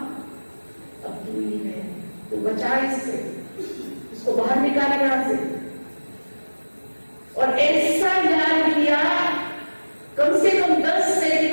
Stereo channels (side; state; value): both; inverted; correlation -1.00